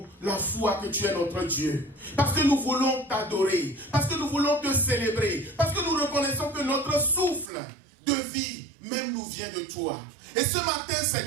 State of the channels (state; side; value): drops out; left; at 7.5 s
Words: la foi que tu es notre Dieu. Parce que nous voulons t'adorer. Parce que nous voulons te célébrer. Parce que nous reconnaissons que notre souffle de vie même nous vient de toi. Et ce matin,